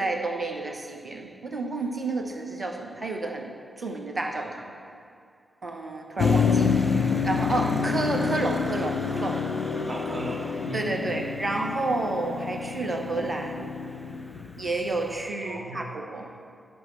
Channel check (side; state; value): both; normal; correlation 0.74